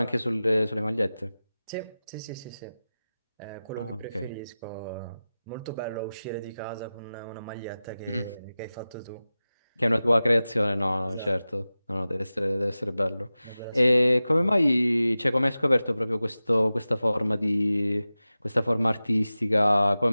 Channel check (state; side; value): inverted; both; correlation -0.95